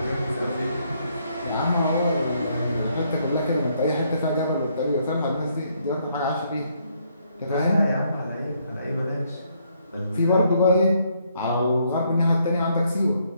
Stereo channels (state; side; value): inverted; both; correlation -0.72